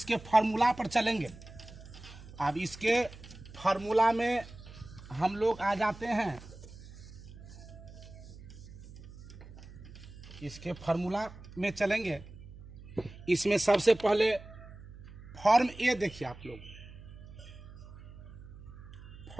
फार्मूला पर चलेंगे। अब इसके फार्मूला में हम लोग आ जाते हैं। इसके फार्मूला में चलेंगे। इसमें सबसे पहले फॉर्म ए देखिए आप लोग।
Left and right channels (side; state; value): right; noise; hum, 16 dB below the sound